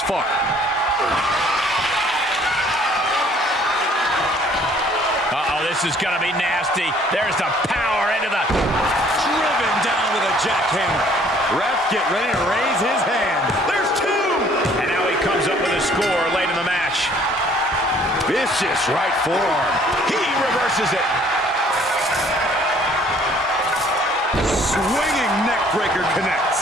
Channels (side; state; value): both; normal; correlation 0.58